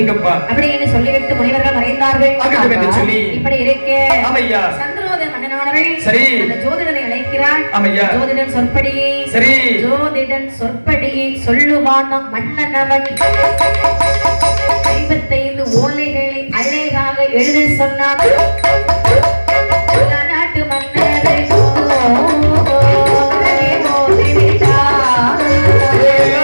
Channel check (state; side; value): inverted; both; correlation -1.00